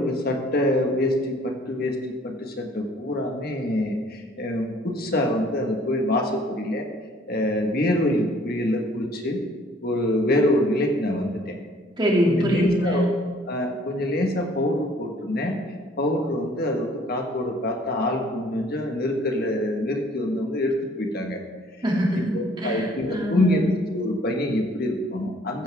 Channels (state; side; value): normal; both; correlation 0.58